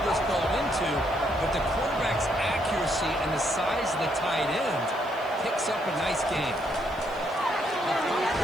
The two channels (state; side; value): noise; right; hiss, 26 dB below the sound